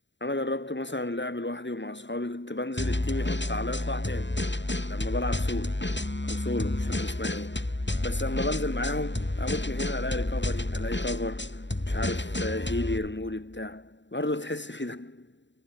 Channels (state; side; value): late; right; 0.53 ms